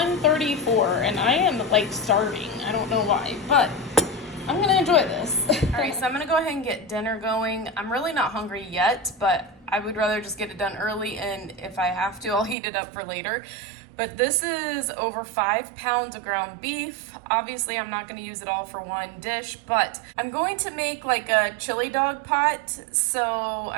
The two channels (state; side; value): drops out; left; at 12.6 s